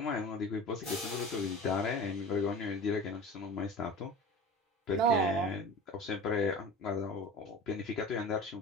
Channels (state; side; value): normal; both; correlation 0.36